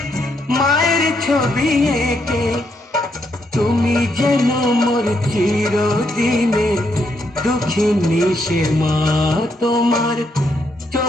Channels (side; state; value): both; normal; correlation 0.77